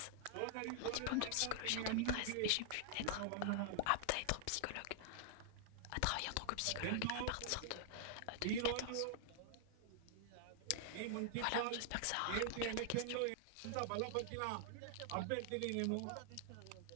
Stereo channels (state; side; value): different; both; correlation 0.00